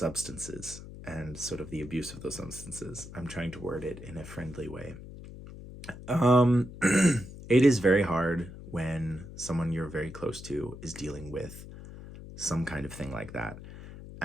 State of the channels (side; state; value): left; noise; hum, 14 dB below the sound